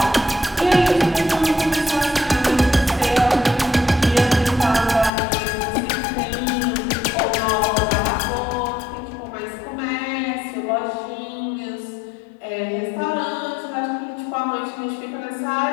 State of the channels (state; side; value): drops out; right; at 5.1 s